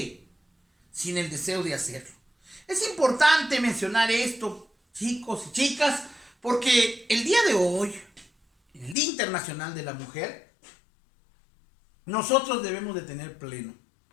sin el deseo de hacerlo. Es importante mencionar esto, chicos y chicas, porque el día de hoy, el Día Internacional de la Mujer, nosotros debemos de tener pleno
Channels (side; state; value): right; drops out; at 9.0 s